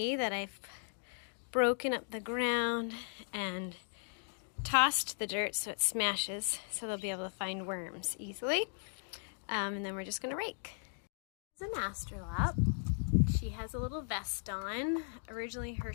that I've broken up the ground and tossed the dirt so it smashes, so they'll be able to find worms easily. And then we're just gonna rake. This is an astrolop. She has a little vest on. Originally her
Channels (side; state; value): right; silent; 53 dB below the other